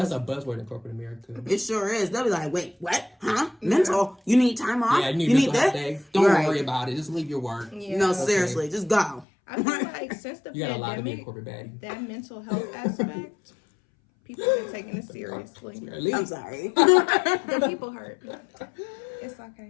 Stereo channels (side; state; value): right; drops out; at 9.2 s